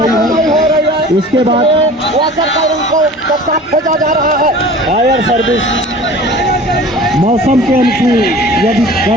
है। इसके बाद खोजा जा रहा है। फायर सर्विस मौसम के अनुकूल, यदि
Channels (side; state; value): both; normal; correlation 0.42